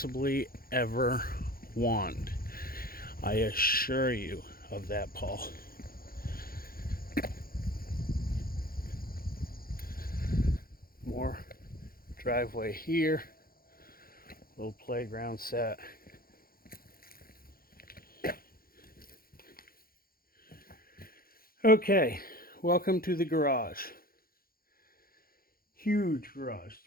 ever want. I assure you of that, Paul. More driveway here. Little playground set. Okay, welcome to the garage. Huge garage,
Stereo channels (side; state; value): right; late; 0.43 ms